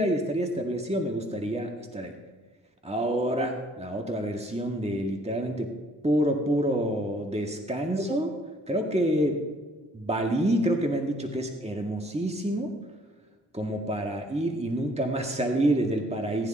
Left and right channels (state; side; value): normal; both; correlation 0.61